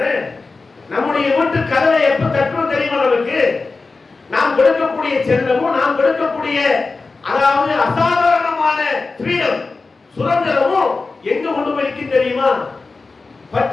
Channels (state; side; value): quieter; right; 3.9 dB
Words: நம்முடைய வீட்டு கதவை எப்ப தட்டுவோம் தெரியுமா? நமக்கு நாம் கொடுக்கக்கூடிய செல்லமும் நாம் கொடுக்கக்கூடிய அதாவது அசாதாரணமான ஃப்ரீடம் சுதந்திரமும் எங்க கொண்டு போய் தெரியுமா?